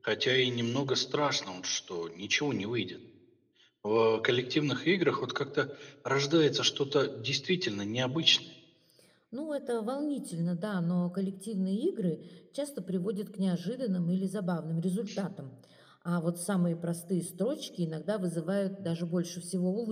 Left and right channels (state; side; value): identical; both; correlation 1.00